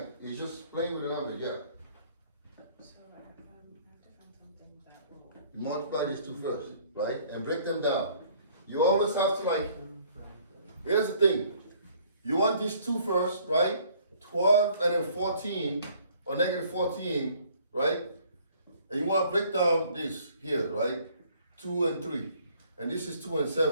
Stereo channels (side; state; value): both; inverted; correlation -0.58